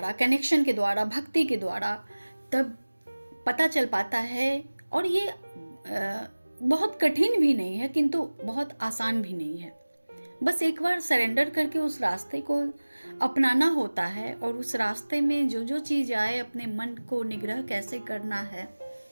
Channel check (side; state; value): both; inverted; correlation -1.00